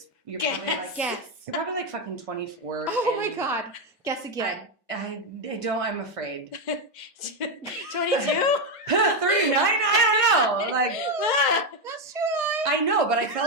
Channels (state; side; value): normal; both; correlation 0.06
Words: you're Guess. probably like, Guess. you're probably like fucking 24. Oh my and God. Guess again. I don't, I'm afraid. 22? 39? I don't know. Like, That's true. I know, but I